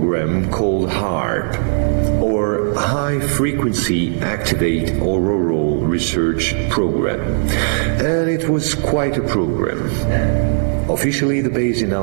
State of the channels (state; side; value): silent; left; digital silence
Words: called HAARP, or High Frequency Activate Auroral Research Program. And it was quite a program. Officially, the base in